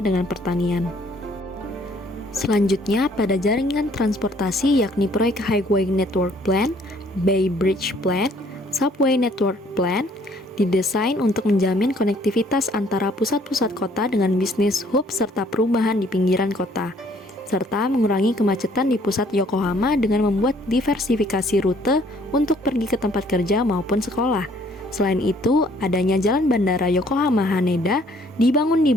dengan pertanian. Selanjutnya, pada jaringan transportasi yakni proyek Highway Network Plan, Bay Bridge Plan, Subway Network Plan, didesain untuk menjamin konektivitas antara pusat-pusat kota dengan bisnis hub serta perumahan di pinggiran kota, serta mengurangi kemacetan di pusat Yokohama dengan membuat diversifikasi rute untuk pergi ke tempat kerja maupun sekolah. Selain itu, adanya jalan bandara Yokohama Haneda dibangun di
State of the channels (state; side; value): normal; both; correlation 0.62